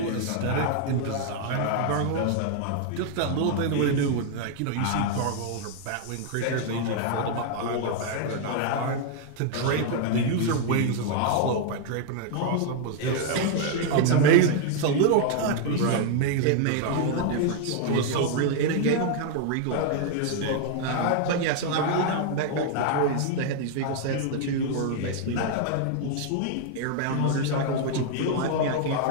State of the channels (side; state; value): both; different; correlation 0.00